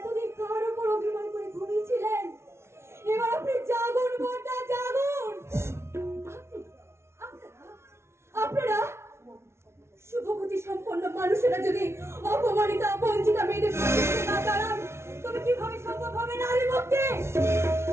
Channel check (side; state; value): left; late; 0.13 ms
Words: কার উপর অভিমান করে ঘুমিয়েছিলেন? এবার আপনি জাগুন বর্দা, জাগুন। আপনারা শুভবুদ্ধি সম্পন্ন মানুষেরা যদি অপমানিত বঞ্চিত মেয়েদের পাশে না দাঁড়ান, তবে কিভাবে সম্ভব হবে নারী মুক্তি?